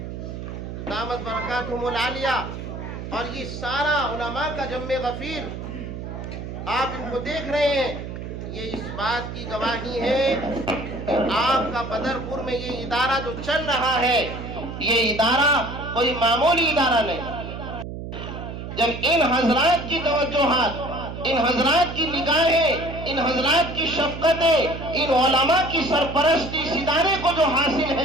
دامت برکاتہم العالیہ، اور یہ سارا علماء کا جمع غفیر، آپ ان کو دیکھ رہے ہیں، یہ اس بات کی گواہی ہے کہ آپ کا بدرپور میں یہ ادارہ جو چل رہا ہے، یہ ادارہ کوئی معمولی ادارہ نہیں۔ جب ان حضرات کی توجہات، ان حضرات کی نگاہیں، ان حضرات کی شفقتیں، ان علماء کی سرپرستی اس ادارے کو جو حاصل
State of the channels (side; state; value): right; noise; hum, 8 dB below the sound